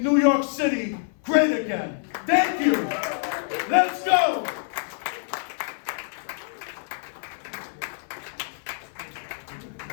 New York City great again. Thank you. Let's go.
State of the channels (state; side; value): silent; right; 61 dB below the other